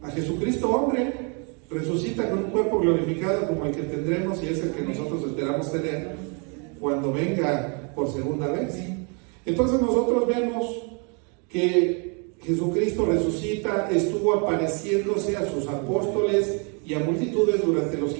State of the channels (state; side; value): quieter; left; 35.9 dB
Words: a Jesucristo hombre. Resucita con un cuerpo glorificado como el que tendremos, y es el que nosotros esperamos tener cuando venga por segunda vez. Entonces nosotros vemos que Jesucristo resucita, estuvo apareciéndose a sus apóstoles y a multitudes durante los